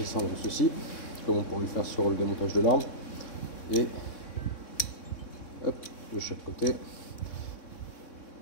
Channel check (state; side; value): late; right; 3.6 ms